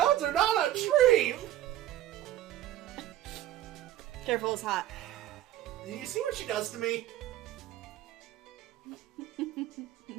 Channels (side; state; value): left; quieter; 13.4 dB